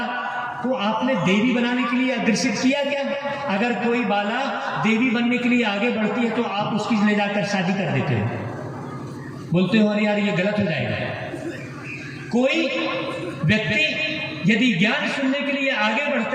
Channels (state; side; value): identical; both; correlation 1.00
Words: को आपने देवी बनाने के लिए अग्रसित किया क्या? अगर कोई बाला देवी बनने के लिए आगे बढ़ती है तो आप उसकी ले जाकर शादी कर देते हो, बोलते हो अरे यार ये गलत हो जाएगा। कोई व्यक्ति यदि ज्ञान सुनने के लिए आगे